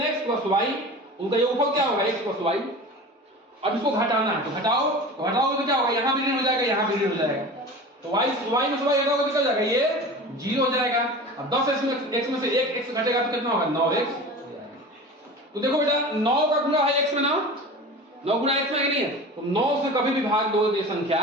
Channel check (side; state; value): both; normal; correlation 0.35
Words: + y, उनका योगफल क्या होगा x + y। अब इसको घटाना है, तो घटाओ तो क्या होगा, यहां भी ऋण हो जाएगा, यहां भी ऋण हो जाएगा, तो y में से y घटाओगे निकल जाएगा, ये 0 हो जाएगा। अब 10x में से 1x घटेगा तो कितना होगा 9x। तो देखो बेटा 9 का गुणा है x में ना, 9 गुणा x में नहीं है, तो 9 से कभी भी भाग दो तो ये संख्या